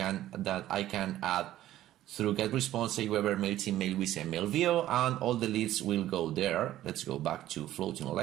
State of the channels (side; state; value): left; quieter; 13.7 dB